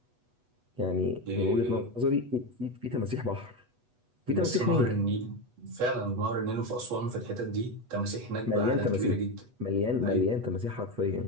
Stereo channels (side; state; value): left; late; 8.1 ms